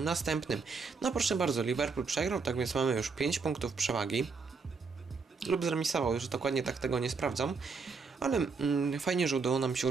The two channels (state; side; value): quieter; left; 4.8 dB